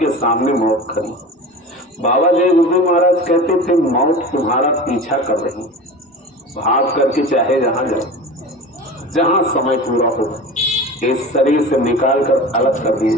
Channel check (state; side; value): normal; both; correlation 0.33